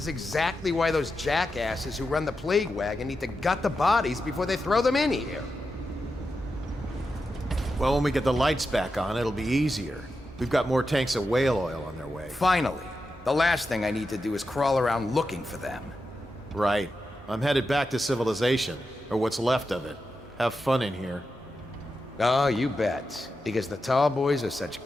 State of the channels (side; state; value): both; normal; correlation 0.89